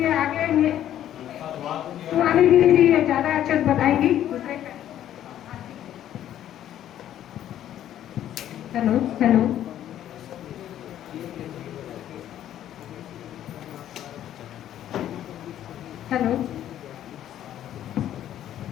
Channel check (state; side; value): quieter; right; 11.5 dB